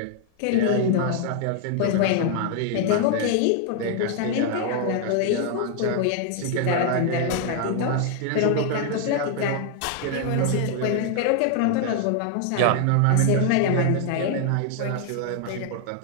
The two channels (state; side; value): different; both; correlation 0.00